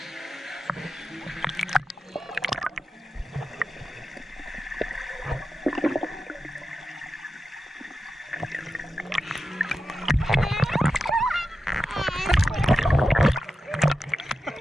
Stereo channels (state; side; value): normal; both; correlation 0.90